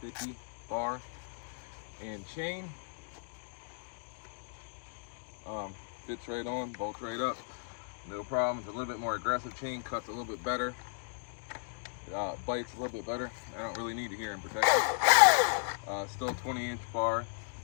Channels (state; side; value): silent; right; digital silence